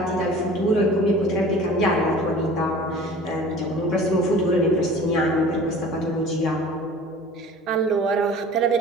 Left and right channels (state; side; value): normal; both; correlation 0.43